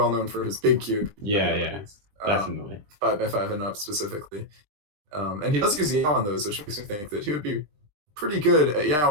known for his big cube. Yeah, definitely. 5x5 and up specifically. And he does use Yao on those, which makes me think that he would be pretty good at Yao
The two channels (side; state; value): left; late; 20 ms